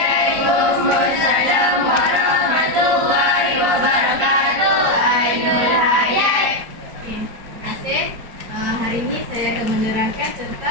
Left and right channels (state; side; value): late; left; 4.4 ms